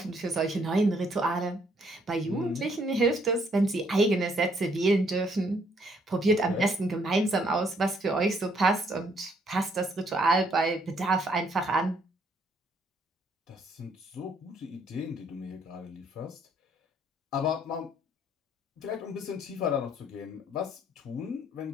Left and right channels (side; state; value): both; normal; correlation 0.68